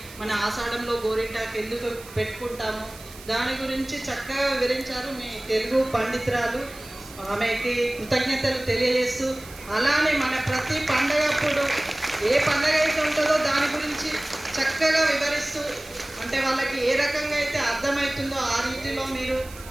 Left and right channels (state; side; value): noise; right; hiss, 18 dB below the sound